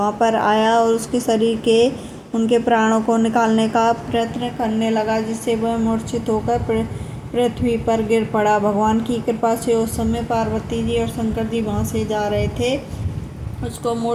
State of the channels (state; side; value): identical; both; correlation 1.00